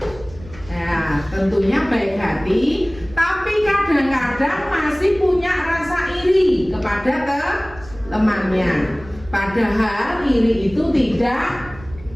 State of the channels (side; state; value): right; noise; rumble, 19 dB below the sound